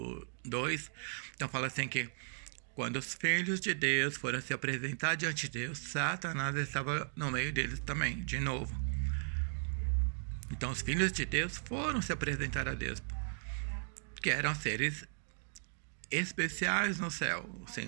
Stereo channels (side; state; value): left; silent; digital silence